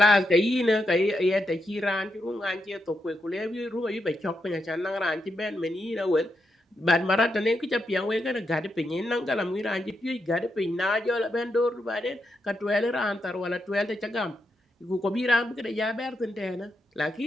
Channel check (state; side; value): normal; both; correlation 0.84